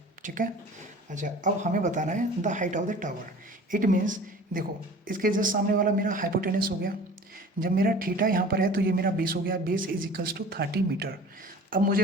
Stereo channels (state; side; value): normal; both; correlation 0.43